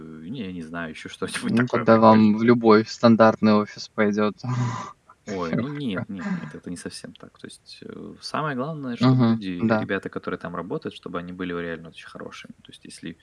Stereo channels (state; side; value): identical; both; correlation 1.00